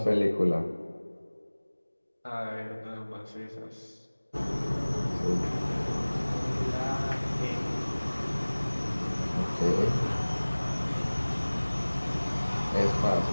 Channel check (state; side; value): inverted; both; correlation -1.00